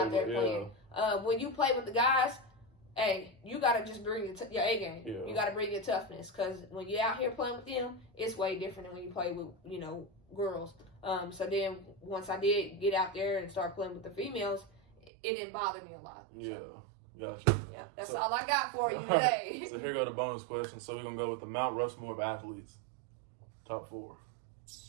there playing. When you play with the guys, hey, you got to just bring your A game. You got to bring your toughness, because when you're out here playing with them, it's way different than when you play with, you know, girls. So then once I did get out there and start playing with the females, it didn't bother me a lot. Gotcha. Yeah, that's all I got for you today. So here go the bonus question. So we're going to go with the Mount Rushmore of athletes. Top 4.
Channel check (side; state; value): left; drops out; at 15.1 s